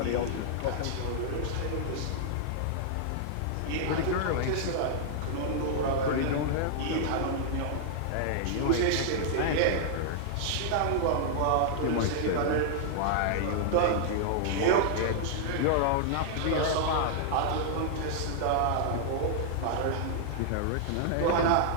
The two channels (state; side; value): different; both; correlation -0.01